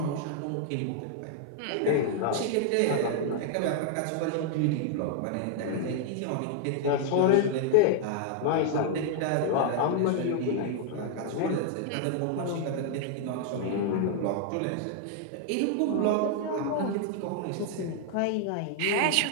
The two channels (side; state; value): both; different; correlation 0.00